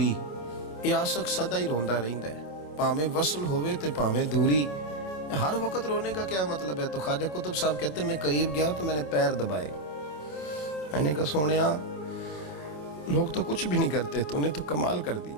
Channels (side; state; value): right; late; 27 ms